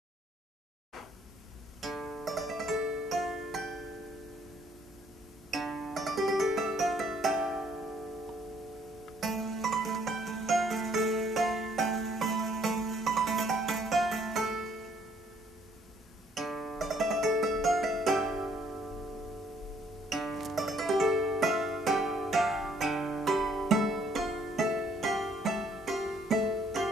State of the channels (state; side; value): normal; both; correlation 0.65